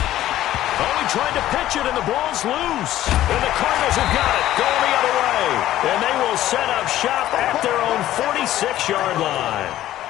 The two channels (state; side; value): quieter; right; 13.7 dB